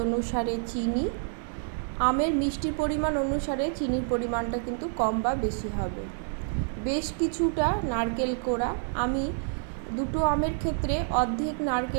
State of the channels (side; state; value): left; silent; 59 dB below the other